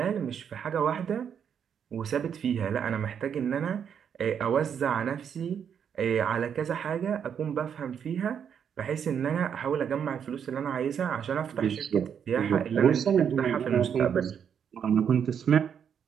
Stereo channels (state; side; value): quieter; left; 7.9 dB